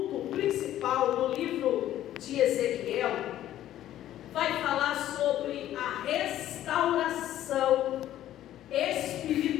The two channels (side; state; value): right; quieter; 12.7 dB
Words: principal do livro de Ezequiel vai falar sobre a restauração